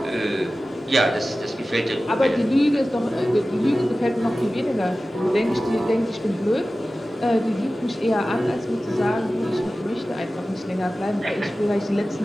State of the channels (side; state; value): both; normal; correlation 0.96